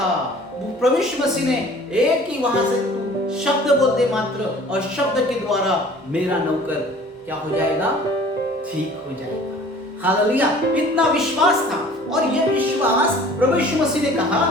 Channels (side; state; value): both; normal; correlation 0.48